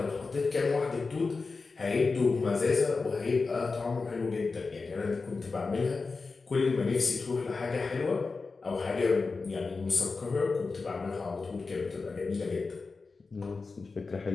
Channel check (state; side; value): quieter; right; 4.2 dB